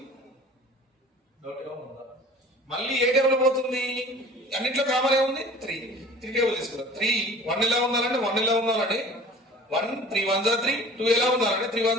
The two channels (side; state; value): both; normal; correlation 0.44